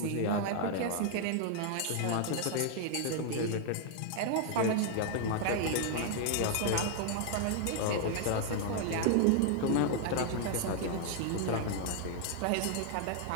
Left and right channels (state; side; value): different; both; correlation 0.00